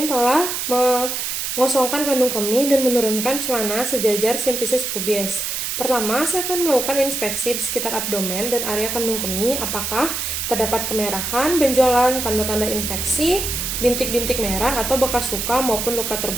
telah mengosongkan kandung kemih dan menurunkan celana sejajar simpisis pubis. Pertama, saya akan melakukan inspeksi di sekitar abdomen dan area kandung kemih, apakah terdapat kemerahan, benjolan, tanda-tanda infeksi, bintik-bintik merah atau bekas luka maupun luka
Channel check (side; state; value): right; noise; hiss, 3 dB below the sound